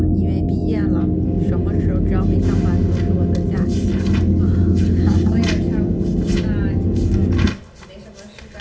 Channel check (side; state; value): both; identical; correlation 1.00